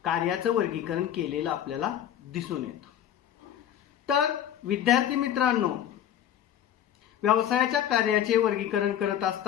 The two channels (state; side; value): quieter; right; 10.5 dB